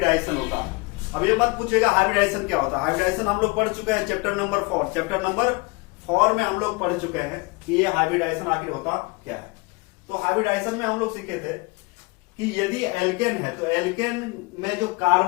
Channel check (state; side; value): quieter; right; 26.6 dB